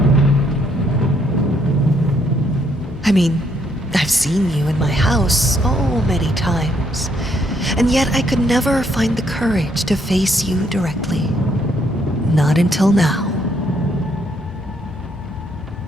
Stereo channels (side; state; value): both; normal; correlation 0.71